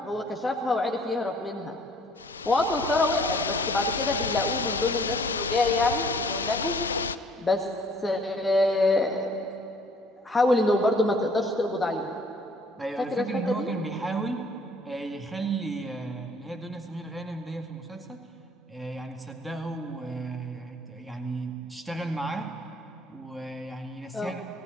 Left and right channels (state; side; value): normal; both; correlation 0.57